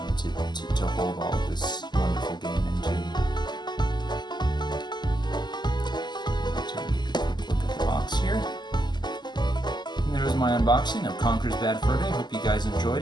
to hold all of this wonderful game into. Take a quick look at the box here. And there's my my unboxing of Conker's Bad Fur Day. Hope you guys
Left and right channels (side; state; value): right; late; 0.21 ms